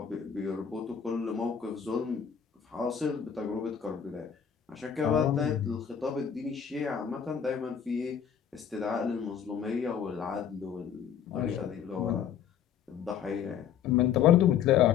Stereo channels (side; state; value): right; quieter; 8.3 dB